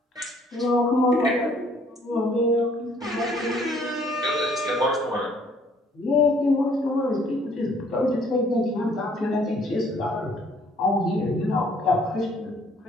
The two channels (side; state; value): both; normal; correlation 0.61